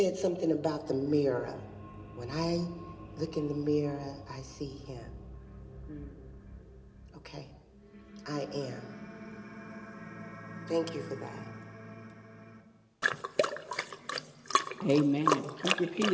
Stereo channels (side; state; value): both; identical; correlation 1.00